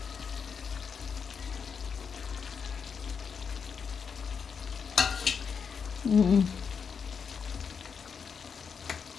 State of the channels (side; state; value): right; quieter; 6.2 dB